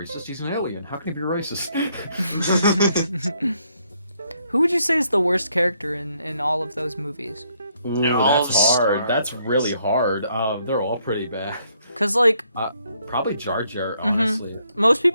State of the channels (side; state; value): both; inverted; correlation -0.72